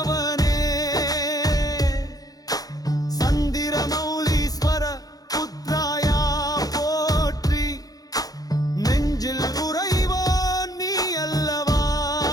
சந்திர மௌலீஸ்வர புத்ராயா போற்றி. நெஞ்சில் உறைவோன் நீ அல்லவா.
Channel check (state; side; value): late; right; 0.18 ms